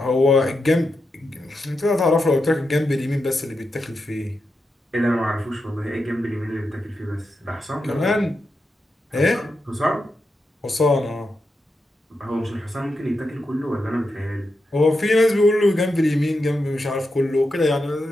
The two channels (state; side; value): normal; both; correlation 0.87